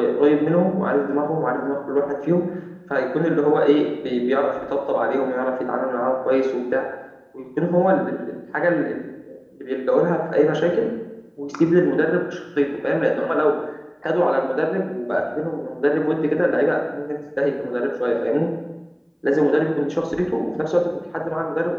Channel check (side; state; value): both; identical; correlation 1.00